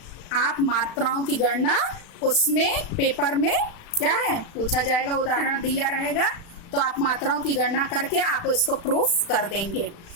आप मात्राओं की गणना उसमें पेपर में क्या है पूछा जाएगा, उदाहरण दिया रहेगा, तो आप मात्राओं की गणना करके आप इसको प्रूफ कर देंगे।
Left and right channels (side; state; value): right; late; 36 ms